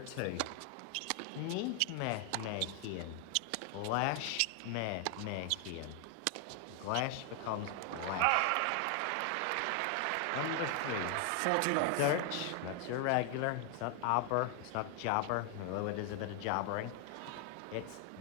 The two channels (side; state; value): both; different; correlation 0.00